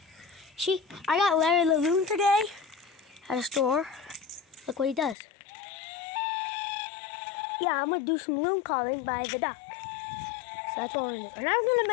See, I got Larry the loon today at a store. Look what he does. Yeah, I'm gonna do some loon calling by the duck. So that's what we're gonna do. And I'm gonna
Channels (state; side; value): drops out; right; at 5.2 s